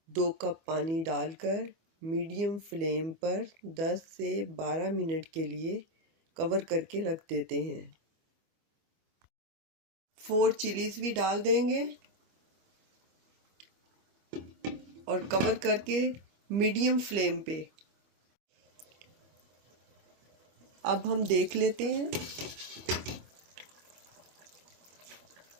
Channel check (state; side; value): late; left; 25 ms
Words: 2 कप पानी डालकर मीडियम फ्लेम पर 10 से 12 मिनट के लिए कवर करके रख देते हैं। 4 चिलीज भी डाल देंगे और कवर करके मीडियम फ्लेम पे। अब हम देख लेते हैं